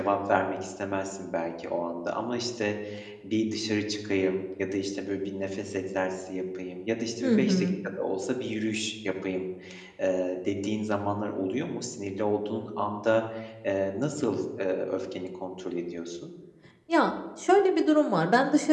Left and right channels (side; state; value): both; identical; correlation 1.00